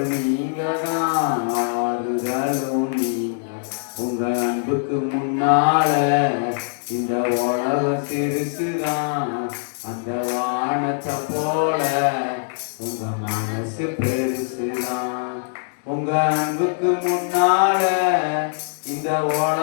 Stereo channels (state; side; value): silent; right; 64 dB below the other